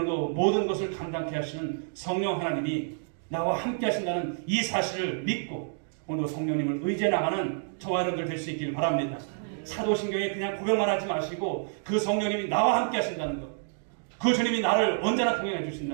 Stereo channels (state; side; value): silent; left; digital silence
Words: 모든 것을 감당케 하시는 성령 하나님이 나와 함께 하신다는 이 사실을 믿고 오늘 성령님을 의지해 나가는 저와 여러분들 될 수 있기를 바랍니다. 사도신경에 그냥 고백만 하지 마시고 그 성령님이 나와 함께 하신다는 것, 그 주님이 나를 언제나 동행해